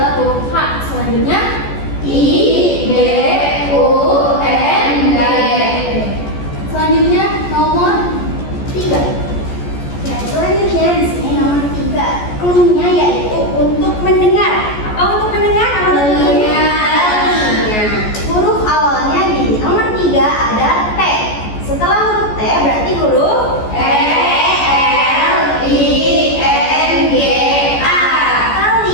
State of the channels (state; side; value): late; right; 14 ms